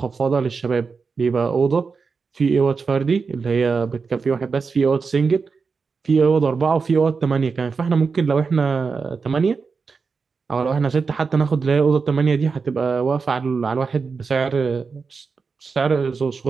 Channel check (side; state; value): left; quieter; 5.0 dB